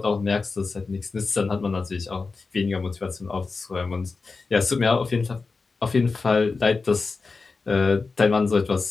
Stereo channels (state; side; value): quieter; right; 4.2 dB